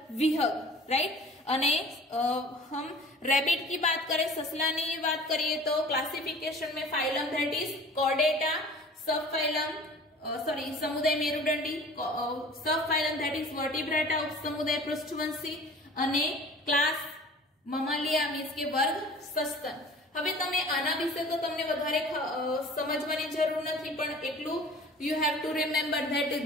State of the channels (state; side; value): normal; both; correlation 0.45